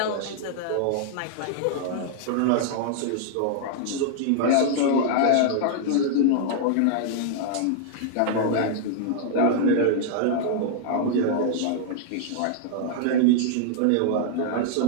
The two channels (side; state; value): both; different; correlation -0.01